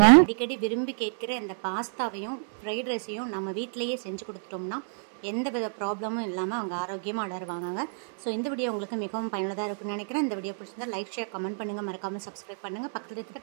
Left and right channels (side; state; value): left; silent; 59 dB below the other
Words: அடிக்கடி விரும்பி கேட்கிற இந்த பாஸ்தாவையும் ஃப்ரைட் ரைஸையும் நம்ம வீட்டிலேயே செஞ்சு கொடுத்துட்டோம்னா எந்த வித ப்ராப்ளமும் இல்லாமல் அவங்க ஆரோக்கியமாக வளருவாங்க. ஸோ இந்த வீடியோ உங்களுக்கு மிகவும் பயனுள்ளதாக இருக்குன்னு நினைக்கிறேன். இந்த வீடியோ பிடிச்சிருந்தா லைக், ஷேர், கமெண்ட் பண்ணுங்கள். மறக்காமல் சப்ஸ்கிரைப் பண்ணுங்கள். பக்கத்தில் இருக்கிற